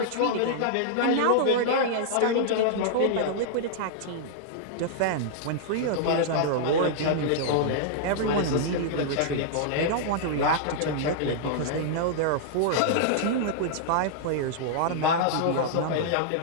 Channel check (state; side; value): different; both; correlation -0.01